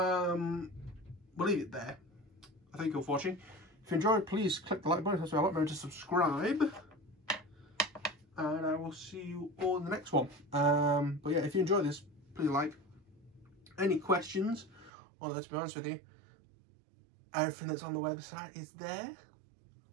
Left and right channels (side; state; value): left; drops out; at 14.9 s